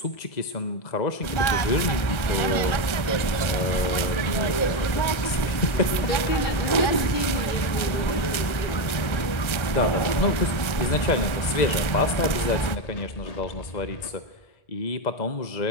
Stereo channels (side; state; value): right; late; 1.4 ms